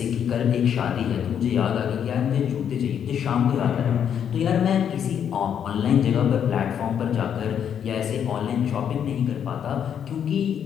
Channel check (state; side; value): quieter; right; 8.6 dB